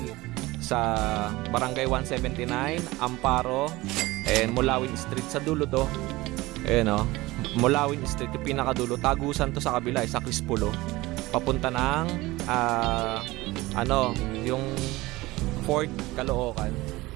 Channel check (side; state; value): left; quieter; 19.9 dB